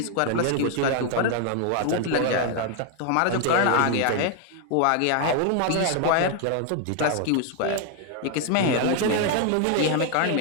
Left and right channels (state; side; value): different; both; correlation 0.00